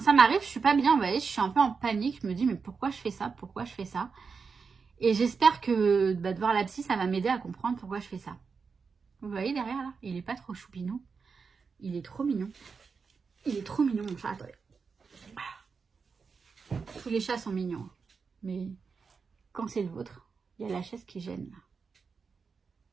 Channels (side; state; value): left; quieter; 5.3 dB